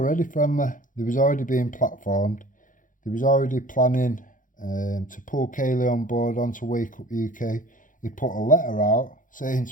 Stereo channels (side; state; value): right; late; 0.38 ms